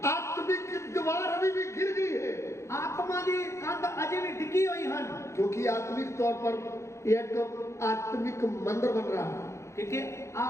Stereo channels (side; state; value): right; late; 0.14 ms